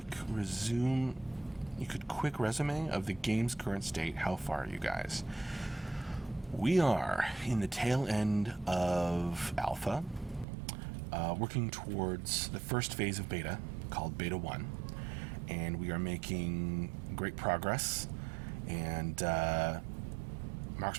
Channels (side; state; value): left; drops out; at 10.5 s